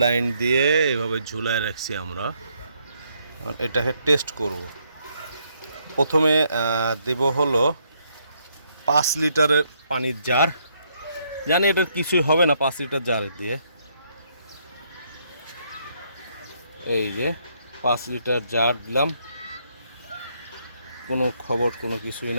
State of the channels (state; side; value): inverted; both; correlation -0.72